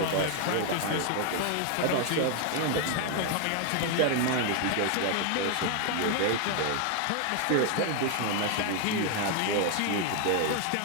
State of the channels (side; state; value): both; different; correlation 0.00